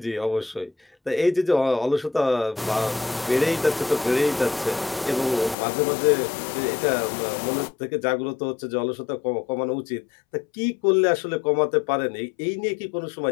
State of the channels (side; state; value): right; drops out; at 5.6 s